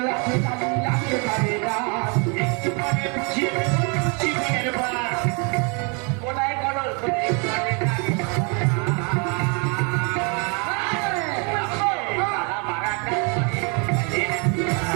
আছে কালি লাগতে পারে না একটু পরে বুঝিয়ে দেবো তুলসী বনের বাস। ওটাই করো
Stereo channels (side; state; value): left; quieter; 34.5 dB